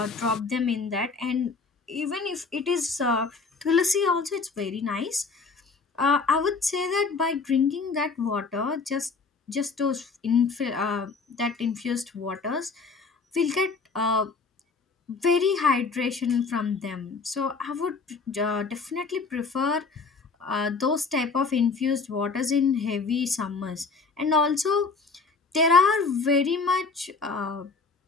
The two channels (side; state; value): right; quieter; 4.5 dB